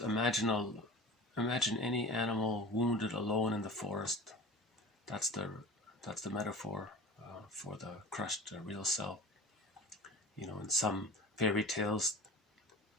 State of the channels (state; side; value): normal; both; correlation 0.36